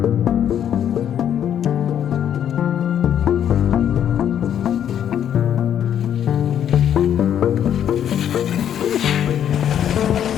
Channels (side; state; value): right; quieter; 9.7 dB